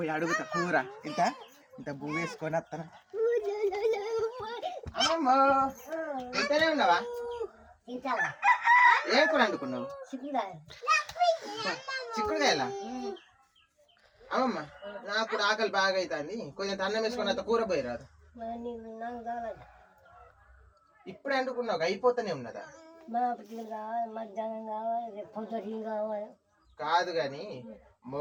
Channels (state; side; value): identical; both; correlation 1.00